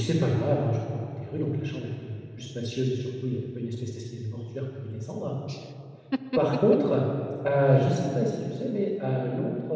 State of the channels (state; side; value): identical; both; correlation 1.00